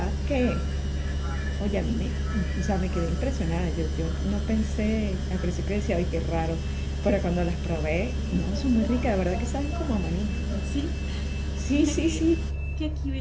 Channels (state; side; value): identical; both; correlation 1.00